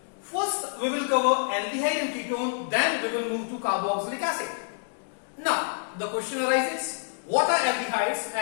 first we will cover aldehyde and ketone, then we will move to carboxylic acid. Now, the question arises, what are aldehydes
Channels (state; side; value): silent; right; 60 dB below the other